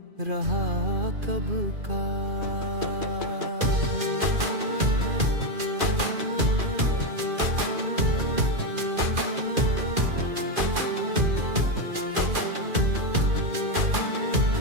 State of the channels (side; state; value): left; late; 2.4 ms